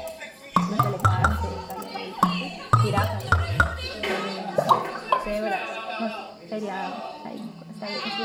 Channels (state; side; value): identical; both; correlation 1.00